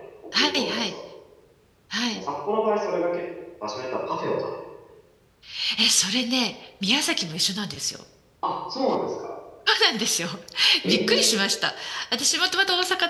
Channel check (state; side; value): identical; both; correlation 1.00